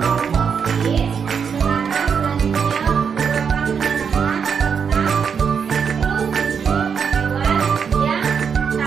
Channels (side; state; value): left; quieter; 6.7 dB